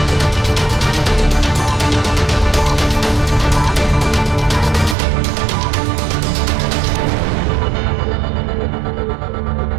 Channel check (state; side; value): drops out; left; at 5.0 s